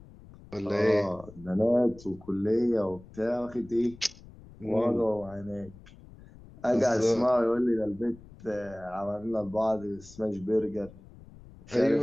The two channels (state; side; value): noise; left; rumble, 21 dB below the sound